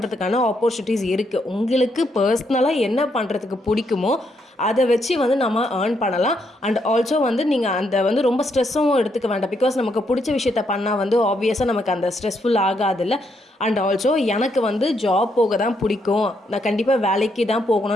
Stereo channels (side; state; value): both; normal; correlation 0.76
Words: ஆப்பர்ச்சுனிட்டிஸ் இருக்குது. உங்களுக்கு பர்சனலாக என்ன பண்ணுறதுக்கு பிடிக்குமோ அதை வச்சு வந்து நம்ம ஏர்ன் பண்ணலாம். அண்ட் ஆல்சோ வந்து நீங்கள் அந்த வந்து ரொம்ப ஸ்ட்ரெஸ்ஸும் எடுத்துக்க வேண்டாம். பிகாஸ் நமக்கு பிடிச்ச விஷயத்த பண்ணால் வந்து ஆப்வியஸாக நமக்கு அந்த ஸ்ட்ரெஸ்ஃபுல் ஆகாதில்ல. அண்ட் ஆல்சோ எனக்கு வந்து ஜாப் போக தான் பிடிக்கும், நான் கண்டிப்பாக வேலைக்கு தான்